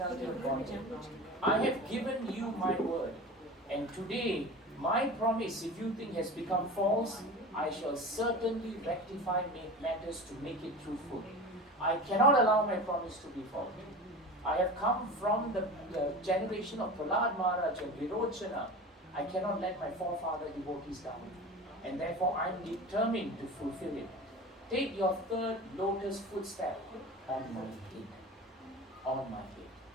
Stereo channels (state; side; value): normal; both; correlation 0.32